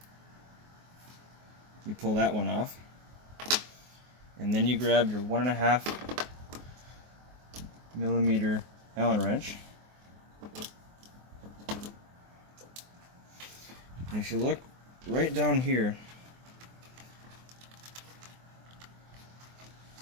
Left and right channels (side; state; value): left; late; 24 ms